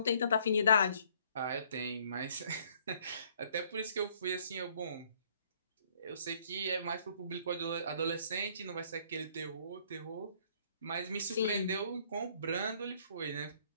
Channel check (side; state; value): both; inverted; correlation -0.62